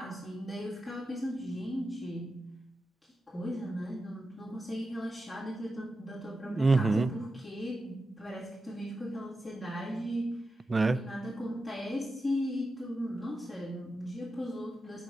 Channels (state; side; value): normal; both; correlation 0.90